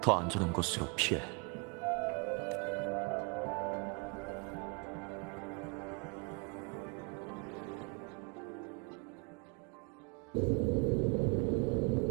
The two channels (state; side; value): quieter; left; 33.0 dB